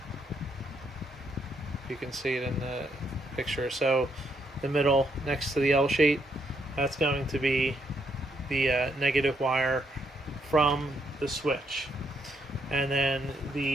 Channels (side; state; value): both; normal; correlation 0.75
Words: You can see it in the picture. So the middle next to the L shape, that's going to be the negative wire from the switch, and then